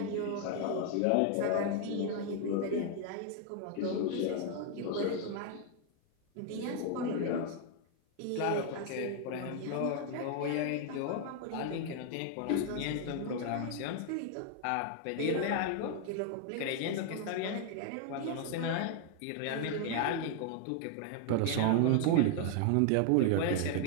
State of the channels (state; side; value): different; both; correlation 0.00